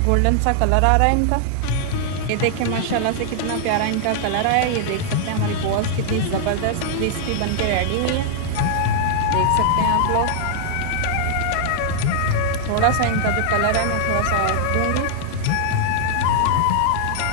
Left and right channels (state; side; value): different; both; correlation 0.00